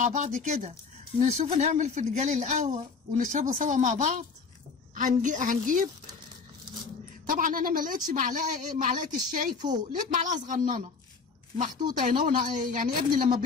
بعض كده نشوف نعمل فنجان القهوه ونشربه سوا مع بعض. هنجيب طبعا انا ما لقيتش معلقه الشاي فوق، لقيت معلقه صغننه محطوطه هنا. يعني ابني لما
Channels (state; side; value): quieter; right; 5.0 dB